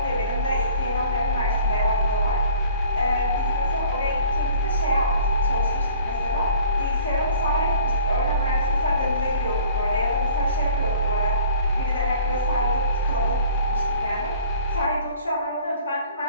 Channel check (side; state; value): both; inverted; correlation -0.50